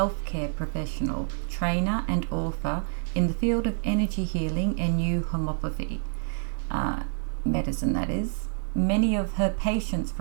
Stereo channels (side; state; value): left; silent; digital silence